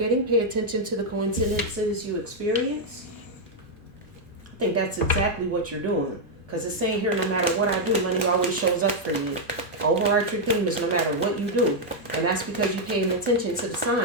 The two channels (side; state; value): both; normal; correlation -0.01